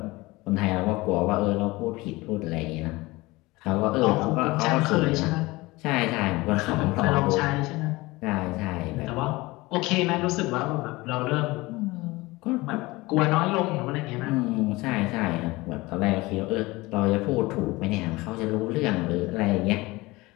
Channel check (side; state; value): right; quieter; 21.4 dB